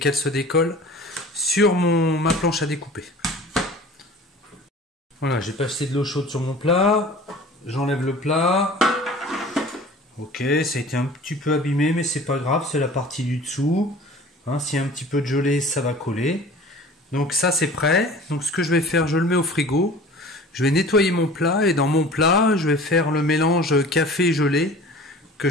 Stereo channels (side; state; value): both; normal; correlation 0.43